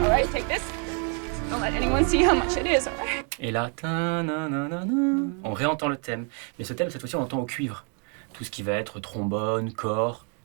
all right? Take this. Don't let anyone see how much it is, all right? Et là, on réentend le thème. Mais ce thème, cette fois-ci, on l'entend au cuivre. Tout ce qui va être trombone, cor,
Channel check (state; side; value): quieter; left; 39.3 dB